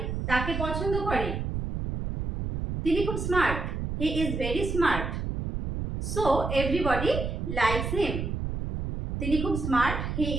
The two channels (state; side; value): noise; right; rumble, 3 dB below the sound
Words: তাকে পছন্দ করে, তিনি খুব smart, he is very smart, so everybody likes him, তিনি খুব smart, he